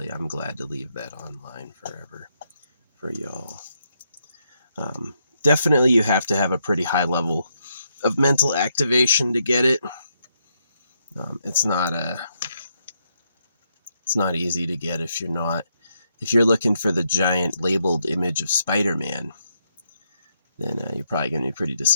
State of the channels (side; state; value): both; inverted; correlation -0.78